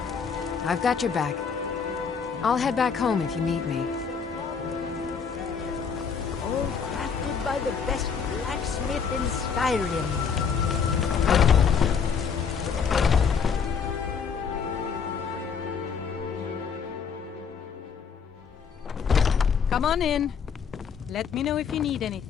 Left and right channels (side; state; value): right; quieter; 6.3 dB